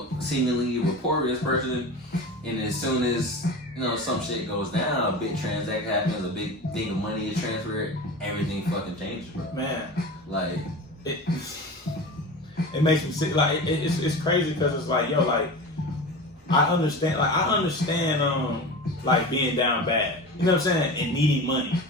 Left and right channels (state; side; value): normal; both; correlation 0.31